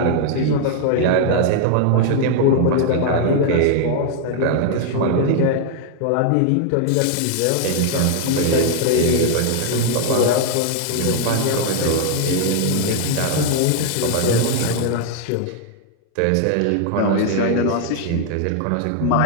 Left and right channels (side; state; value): both; different; correlation 0.00